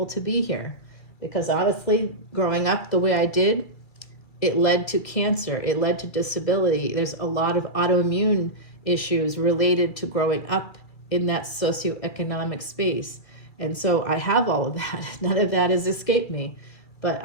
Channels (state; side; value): late; right; 2.3 ms